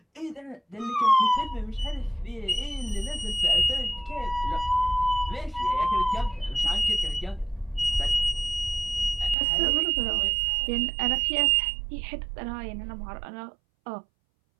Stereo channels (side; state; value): left; drops out; at 9.3 s